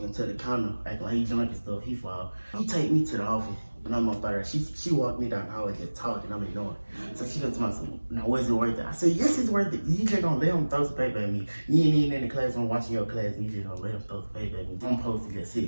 into the counter, acting like he drunk and stuff. He fall. He take me to the office. And I'm up there. She walked me down the hallway just talking. I'm ignoring. So she comes to me, now was it worth it? I said, yes, it's worth it. You just gonna let him throw some paper at me. You ain't even in the class, I'm watching your class, and you just gonna let him throw some paper at me. I'm supposed to just sit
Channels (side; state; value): both; inverted; correlation -1.00